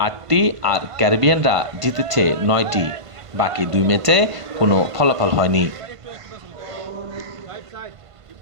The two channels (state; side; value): late; left; 1.5 ms